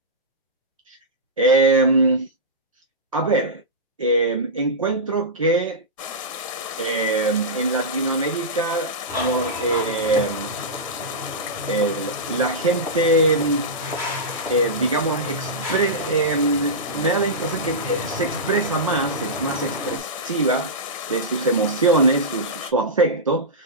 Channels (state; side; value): normal; both; correlation -0.14